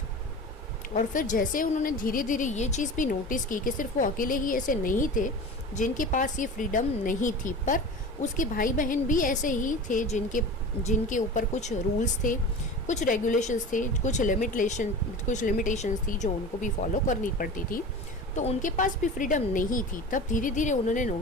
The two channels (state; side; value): normal; both; correlation 0.34